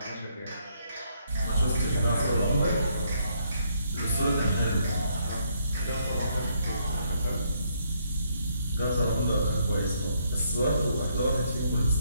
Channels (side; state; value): both; inverted; correlation -0.72